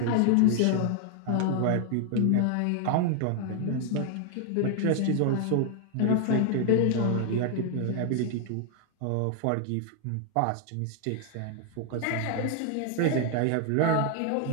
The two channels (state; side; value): different; both; correlation 0.00